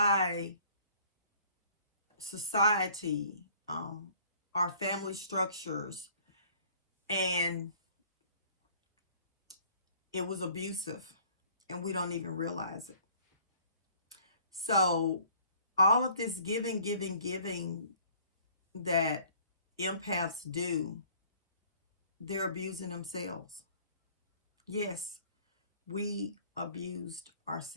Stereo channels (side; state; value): both; inverted; correlation -0.56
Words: society, our family structures, and it was abusive, and we don't even realize it. So all of this giving that empaths do, they're abusing themselves. Yes, we abused